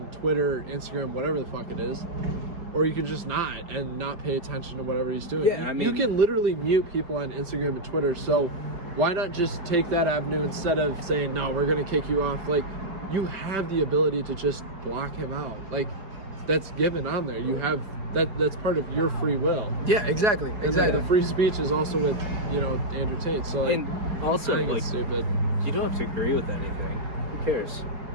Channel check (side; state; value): left; late; 4.8 ms